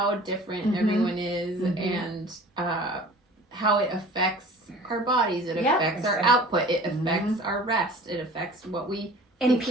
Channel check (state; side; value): normal; both; correlation 0.45